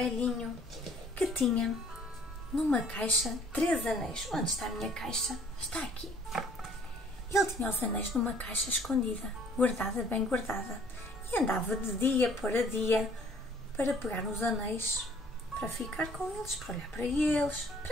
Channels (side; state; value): both; normal; correlation 0.57